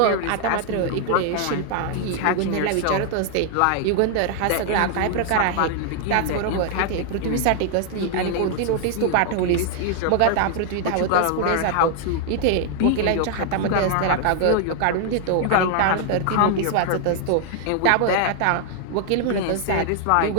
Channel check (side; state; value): both; different; correlation 0.00